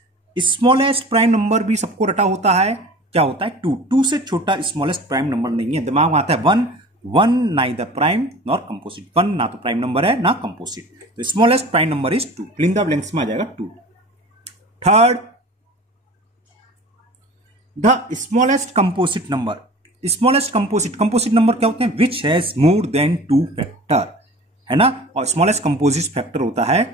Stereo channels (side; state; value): both; normal; correlation 0.40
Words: smallest prime number भी सबको रटा होता है, क्या होता है? 2। 2 से छोटा स्मॉलेस्ट प्राइम नंबर नहीं है, दिमाग में आता है 1। 1 नाइदर प्राइम नॉर कंपोजिट, 1 ना तो प्राइम नंबर है ना कंपोजिट, तो smallest prime number is 2। Fill in the blanks में आ जाएगा 2। Third, the smallest composite number, smallest composite number क्या होते हैं? Which has more than 2 factor, है ना। और स्मॉलेस्ट कंपोजिट फैक्टर होता